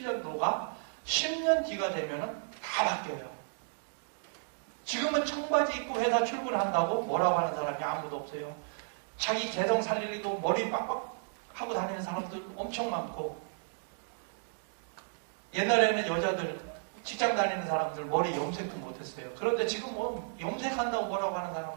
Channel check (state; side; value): silent; left; digital silence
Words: 10년 뒤가 되면은 다 바뀌어요. 지금은 청바지 입고 회사 출근한다고 뭐라고 하는 사람이 아무도 없어요. 자기 개성 살리려고 머리 빡빡 하고 다니는 사람들 엄청 많고, 옛날에는 여자들 직장 다니는 사람들 머리 염색도 못했어요. 그런데 지금 뭐 염색한다고 뭐라고 하는